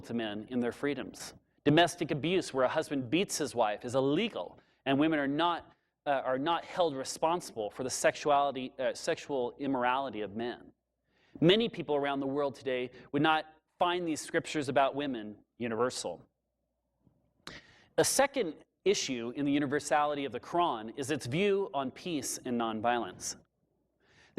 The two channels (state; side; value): identical; both; correlation 1.00